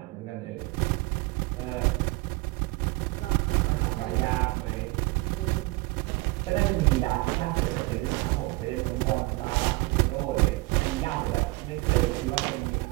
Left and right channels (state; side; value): quieter; left; 22.8 dB